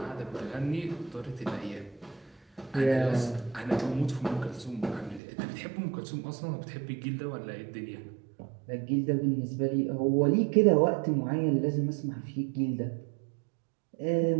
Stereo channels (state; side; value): drops out; left; at 5.2 s